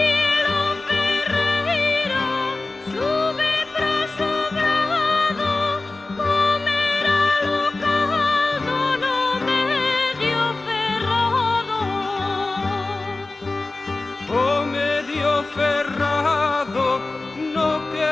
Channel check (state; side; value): quieter; right; 3.3 dB